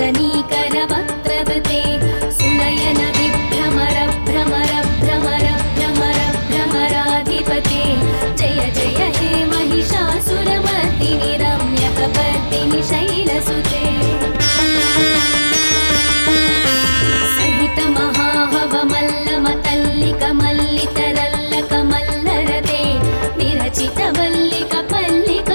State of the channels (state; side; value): inverted; both; correlation -1.00